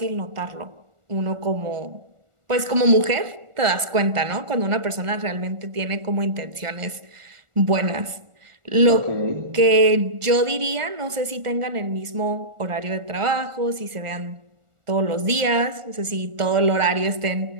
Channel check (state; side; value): late; left; 1.4 ms